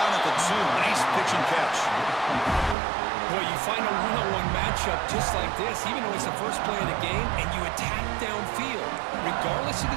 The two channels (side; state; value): left; drops out; at 2.8 s